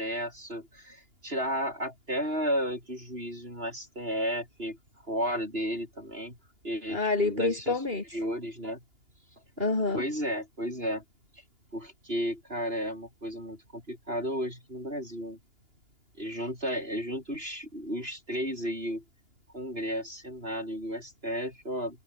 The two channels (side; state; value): left; late; 2.9 ms